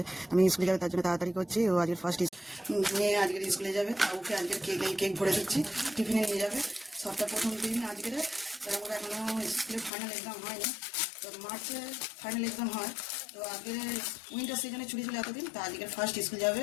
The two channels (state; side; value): drops out; right; at 9.9 s